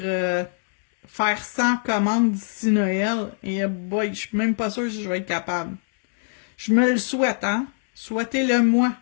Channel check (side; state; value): right; silent; 63 dB below the other